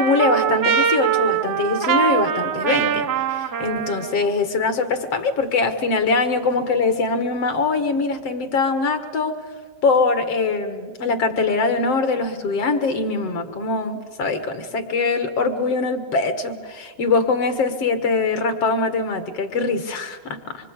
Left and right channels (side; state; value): right; late; 7.6 ms